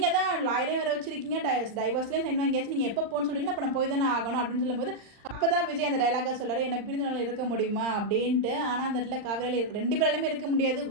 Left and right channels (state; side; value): late; left; 39 ms